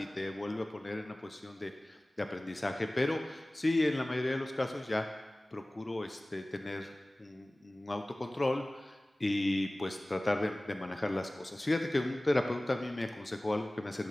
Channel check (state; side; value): normal; both; correlation 0.98